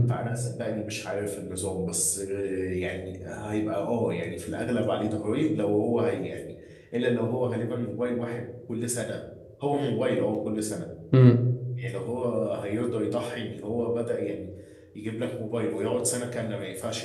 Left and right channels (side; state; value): both; identical; correlation 1.00